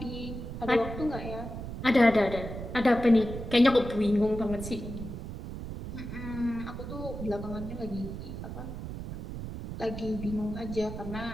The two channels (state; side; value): noise; right; rumble, 8 dB below the sound